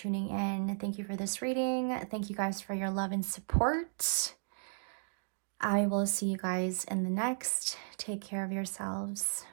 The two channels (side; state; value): left; silent; digital silence